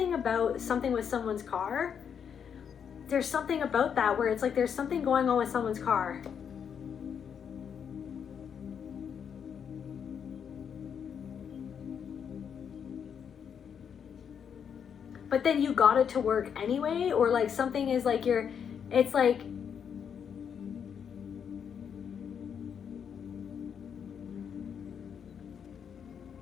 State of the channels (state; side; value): quieter; right; 7.6 dB